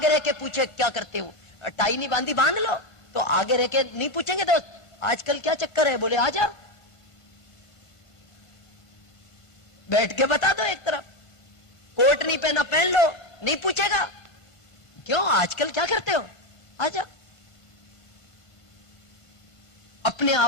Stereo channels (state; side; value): late; right; 1.5 ms